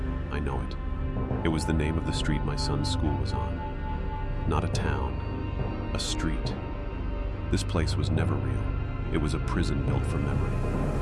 I know it. It was the name of the street my son's school was on. Not a town, a street. This place was never real. It was a prison built for memory.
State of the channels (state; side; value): identical; both; correlation 1.00